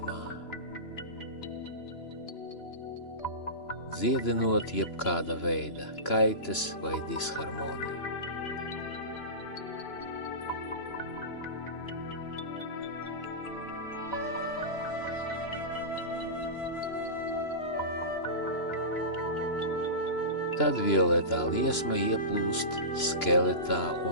dziedinot jebkāda veida kaitas vai disharmoniju. Tad violetā liesma ieplūst skeletā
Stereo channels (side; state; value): right; late; 2.9 ms